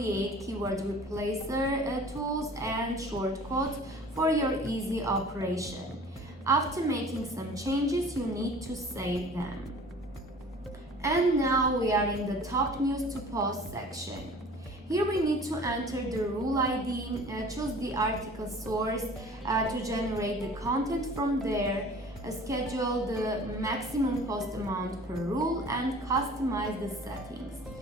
keyword replacer tools and shortcuts for your easy operation. After making some changes, you need to save them. And now we are in the top news to post section. Here we need to enter the rule ID, choose the article source to generate the content from there, schedule the maximum post amount per rule, and customize the settings.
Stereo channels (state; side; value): normal; both; correlation 0.46